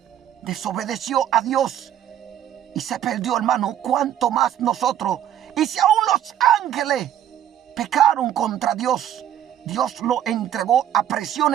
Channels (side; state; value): left; quieter; 10.8 dB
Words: desobedeció a Dios y se perdió, hermano, ¿cuánto más nosotros? Y si aún los ángeles pecaron contra Dios, Dios lo entregó a